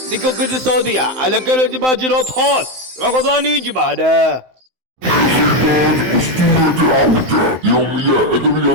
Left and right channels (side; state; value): left; late; 16 ms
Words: الاقتصادية على كل باجرات خاص رمضان يجي بعده. السلطان أسطورة عودة يوميا أدري